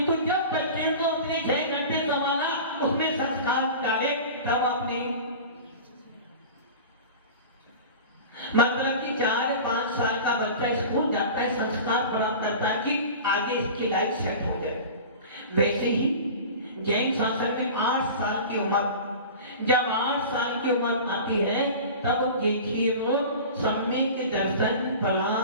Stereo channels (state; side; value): inverted; both; correlation -0.35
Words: जब बच्चे को उसने 6 घंटे संभाला, उसमें संस्कार डाले, तब आपने मतलब कि 4-5 साल का बच्चा स्कूल जाता है, संस्कार प्राप्त करता है कि आगे इसकी लाइफ सेट हो जाए। वैसे ही जैन शासन में 8 साल की उम्र, जब 8 साल की उम्र आती है तब देखिए वो सम्यक दर्शन